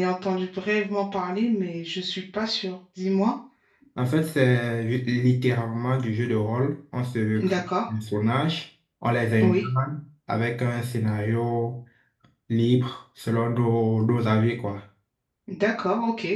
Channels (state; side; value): identical; both; correlation 1.00